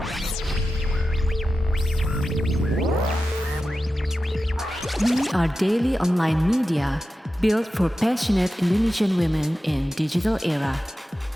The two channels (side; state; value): both; normal; correlation 0.92